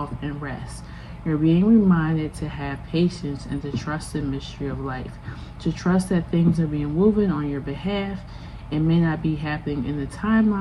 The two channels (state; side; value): identical; both; correlation 1.00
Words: and rest. You're being reminded to have patience and to trust the mystery of life, to trust that things are being woven on your behalf. It may not be happening in the